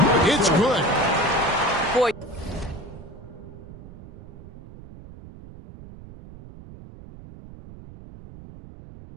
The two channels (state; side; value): noise; right; rumble, 17 dB below the sound